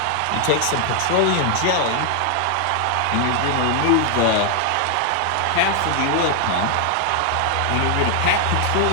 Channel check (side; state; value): both; different; correlation 0.00